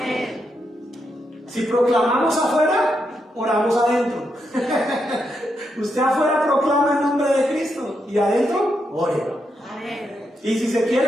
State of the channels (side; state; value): both; normal; correlation 0.82